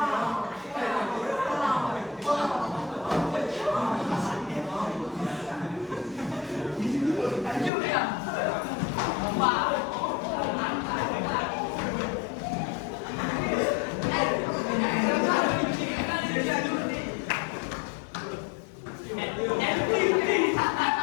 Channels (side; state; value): right; drops out; at 7.7 s